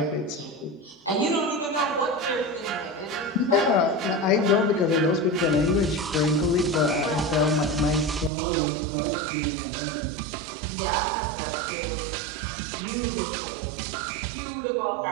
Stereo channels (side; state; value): left; drops out; at 8.3 s